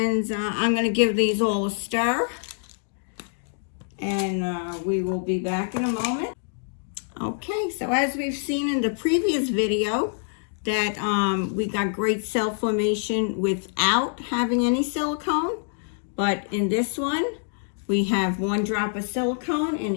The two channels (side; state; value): right; silent; digital silence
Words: I'm going to give these all a stir. And we will be back in a moment. Okay, so as we've seen in the previous video, that we got great cell formation without having any silicone. But in this one, we have 1 drop of silicone in